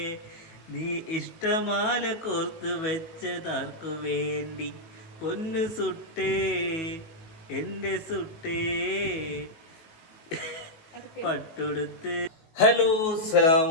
നീ ഇഷ്ടമാല കോർത്തു വെച്ചതാർക്കു വേണ്ടി, പൊന്നു സുട്ടേ എന്റെ സുട്ടേ പട്ടുടുത്ത്. ഹലോ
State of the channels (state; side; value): late; right; 19 ms